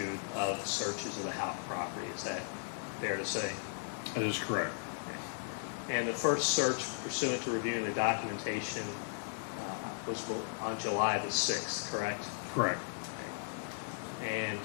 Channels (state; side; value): silent; right; digital silence